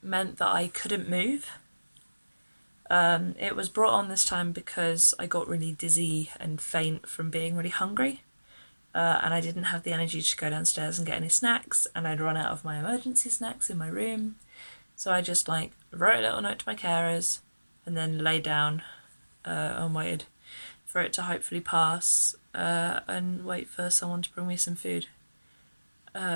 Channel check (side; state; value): both; inverted; correlation -1.00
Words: meant that I couldn't move. It was brought on this time because I got really dizzy and faint from being really hungry, and I didn't have the energy to go downstairs and get any snacks, and I'd run out of my emergency snacks in my room. So I just wrote a little note to my carers and then lay down and waited for it to hopefully pass and wait for someone to bring me some food.